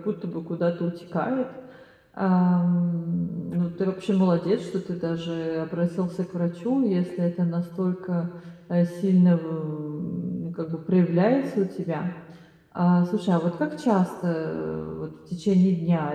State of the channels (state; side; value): identical; both; correlation 1.00